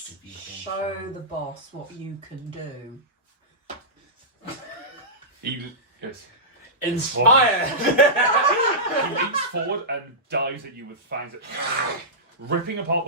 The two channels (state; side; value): normal; both; correlation -0.16